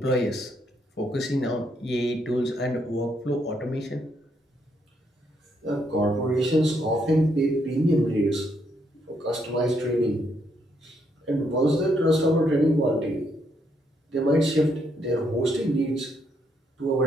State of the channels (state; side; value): normal; both; correlation 0.75